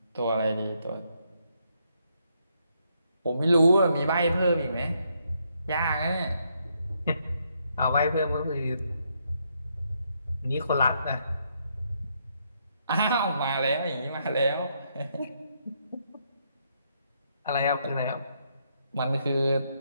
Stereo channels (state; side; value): inverted; both; correlation -0.75